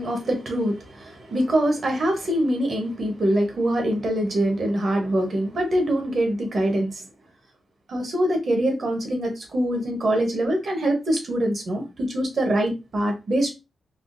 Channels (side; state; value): both; normal; correlation 0.88